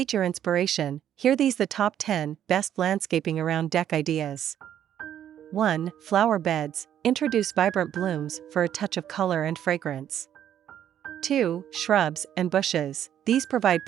your inspiration, here these the top 10 best landscaping around deck ideas. 1. Flower beds, introduce vibrant blooms for a touch of color and fragrance. 2. Shrubs and bushes, these provide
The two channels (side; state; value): left; quieter; 10.4 dB